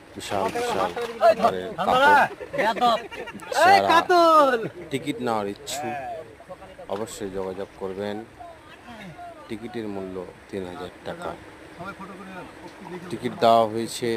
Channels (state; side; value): identical; both; correlation 1.00